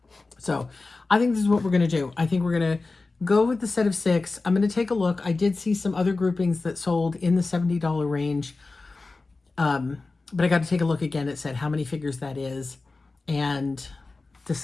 So I think this is what we're going to do. I think we're going to go with the set of 6. I'm going to take a look. I did see some other groupings that sold in the $70 range. But I got to take a look again. It said how many figures that is and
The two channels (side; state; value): right; quieter; 3.6 dB